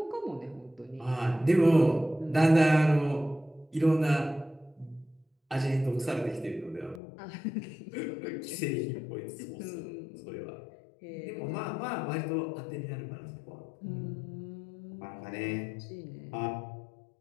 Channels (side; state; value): right; drops out; at 7.0 s